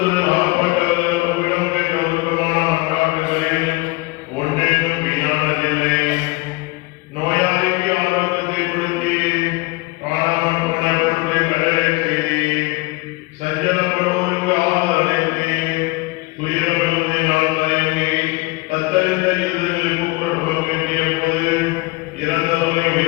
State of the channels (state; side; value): quieter; right; 23.4 dB